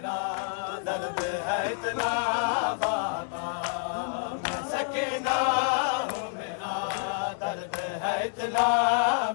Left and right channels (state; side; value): silent; right; 59 dB below the other